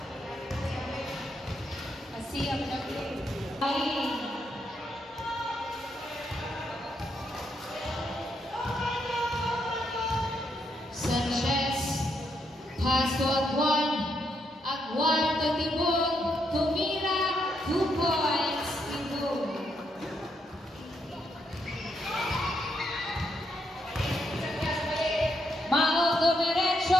Asiyap na play. Sanchez. Pass to Agwan. Agwan to Tibog. Tumira. 2 points. Tibog. Mao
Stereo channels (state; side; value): normal; both; correlation 0.78